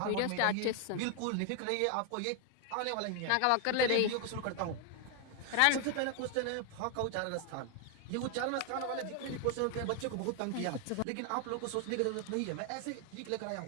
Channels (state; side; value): different; both; correlation 0.01